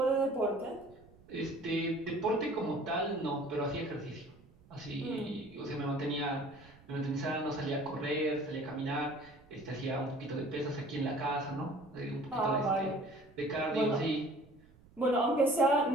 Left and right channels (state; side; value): noise; right; rumble, 25 dB below the sound